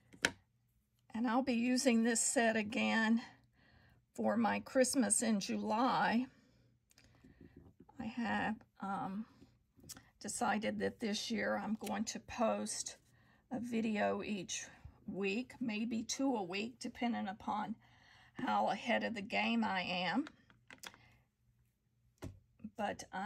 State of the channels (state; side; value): identical; both; correlation 1.00